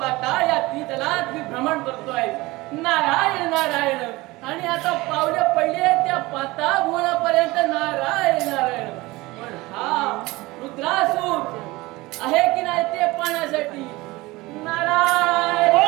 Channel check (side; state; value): left; quieter; 21.0 dB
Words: या त्रितलात मी भ्रमण करतोय. नारायण नारायण. आणि आता पावले पडले त्या पाताळ भुवनापर्यंत नारायण नारायण. पण हा रुद्रासूर आहे की नाही ते पाहण्यासाठी नारायण